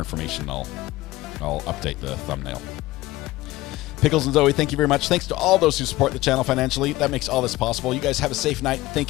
I'll update the thumbnail. Pickles and Zoe, thank you very much. Thanks to all those who support the channel financially. That makes all this possible. You guys have a safe night.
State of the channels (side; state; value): right; quieter; 18.2 dB